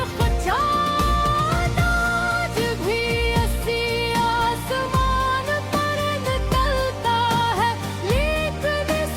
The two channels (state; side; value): identical; both; correlation 1.00